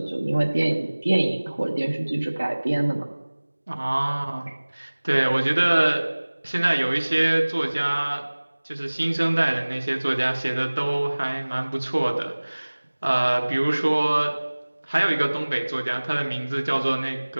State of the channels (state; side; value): inverted; both; correlation -1.00